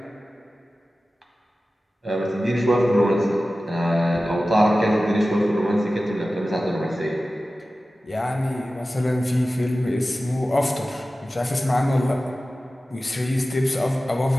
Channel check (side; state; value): both; normal; correlation 0.95